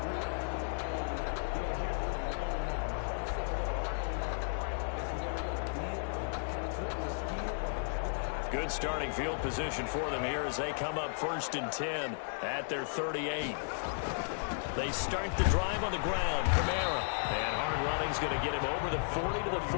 Good starting field position for them here as they come up first and 10 at their 38. They start the drive on the ground. Kamara. And hard running's going to get him over the 40 to the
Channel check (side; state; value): right; silent; digital silence